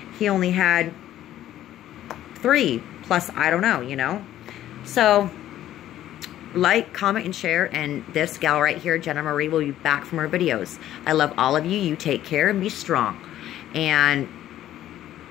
He only had 3, plus I don't know, you know. So, like, comment, and share, and this gal right here, Jenna Marie, will be back from her videos. I love all of you. You take care and be strong. And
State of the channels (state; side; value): quieter; right; 12.7 dB